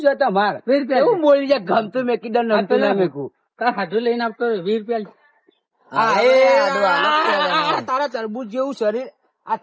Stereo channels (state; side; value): identical; both; correlation 1.00